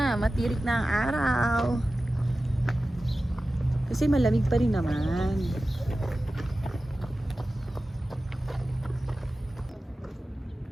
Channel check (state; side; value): normal; both; correlation 0.95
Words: matirik na ang araw. Kasi malamig pa rin naman.